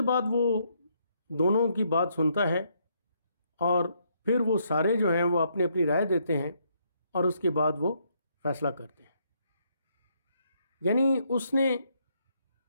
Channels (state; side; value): inverted; both; correlation -0.73